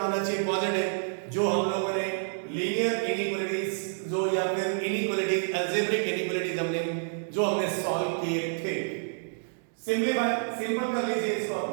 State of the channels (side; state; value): left; silent; digital silence